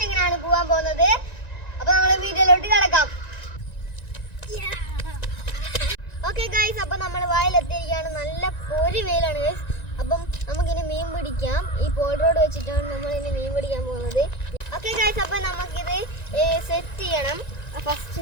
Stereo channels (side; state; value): right; late; 1.9 ms